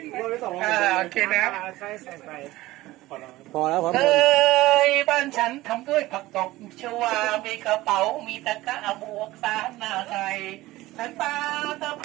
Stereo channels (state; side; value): quieter; left; 17.8 dB